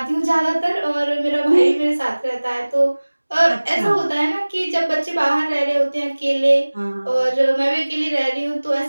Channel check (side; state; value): both; inverted; correlation -1.00